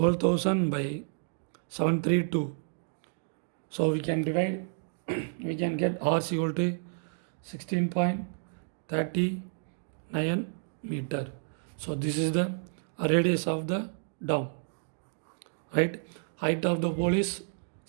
by 732. So we can divide, we can get R is equal to 16.39 meter. So this is the radius of the dome. Right, height of the pole is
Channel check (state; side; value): silent; left; digital silence